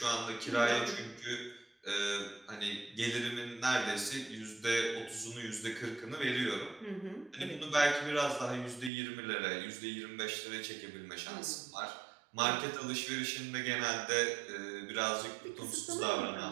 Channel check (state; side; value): drops out; left; at 8.9 s